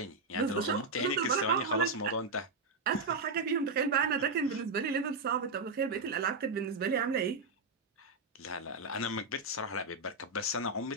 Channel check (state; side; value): quieter; left; 3.6 dB